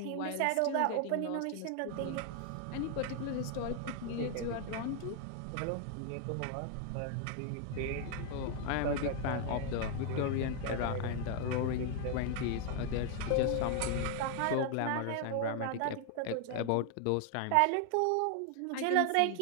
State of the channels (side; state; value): both; different; correlation 0.00